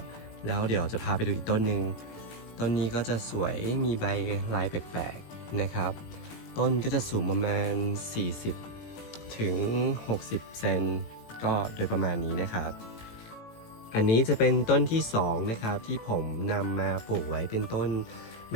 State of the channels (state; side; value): late; right; 18 ms